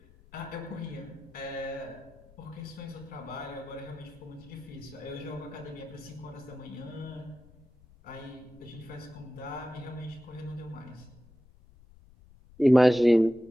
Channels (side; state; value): left; noise; rumble, 24 dB below the sound